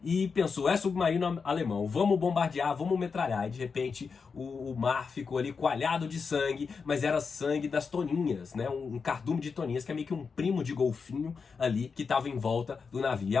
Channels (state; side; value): quieter; right; 5.3 dB